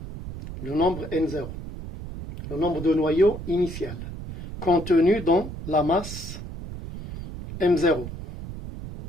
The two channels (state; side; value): noise; right; rumble, 10 dB below the sound